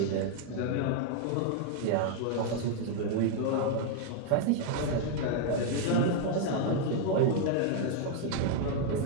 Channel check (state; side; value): different; both; correlation 0.00